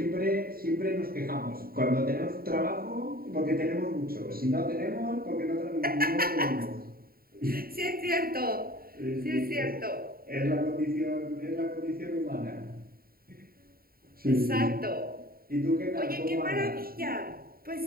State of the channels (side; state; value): left; late; 0.43 ms